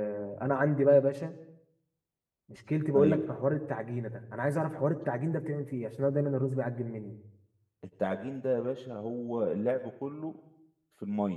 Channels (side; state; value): both; identical; correlation 1.00